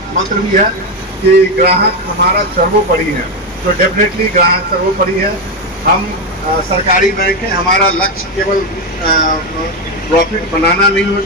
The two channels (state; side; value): normal; both; correlation 0.09